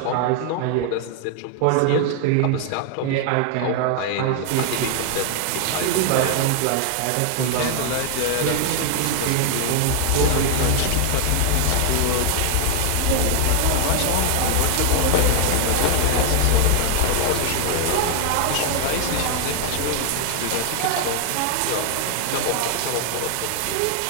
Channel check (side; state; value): both; different; correlation 0.00